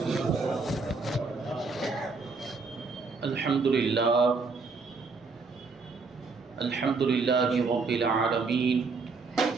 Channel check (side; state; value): left; quieter; 4.3 dB